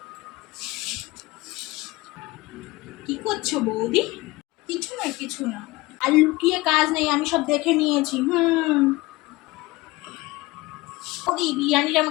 কি করছো বৌদি? কিছু না কিছু না, আর লুকিয়ে কাজ নেই, আমি সব দেখে নিয়েছি। বৌদি বিরিয়ানিটা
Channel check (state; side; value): quieter; right; 21.0 dB